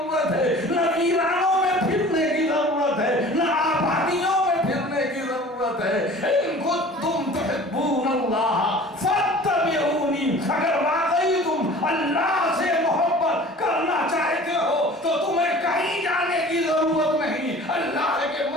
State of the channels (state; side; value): normal; both; correlation 0.44